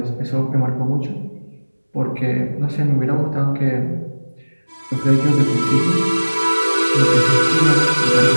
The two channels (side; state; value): both; inverted; correlation -1.00